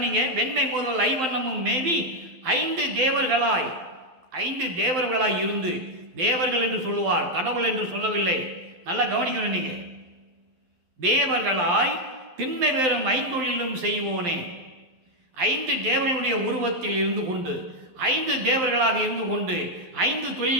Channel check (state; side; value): late; left; 12 ms